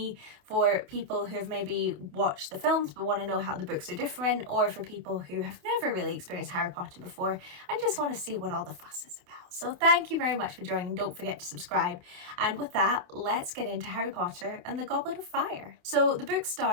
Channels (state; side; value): late; left; 28 ms